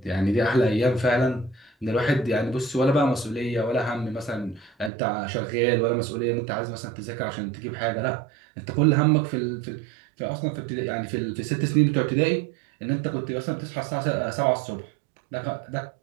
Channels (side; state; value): left; drops out; at 4.9 s